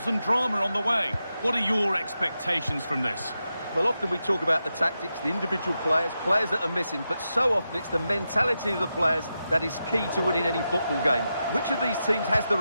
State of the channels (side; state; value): both; inverted; correlation -0.88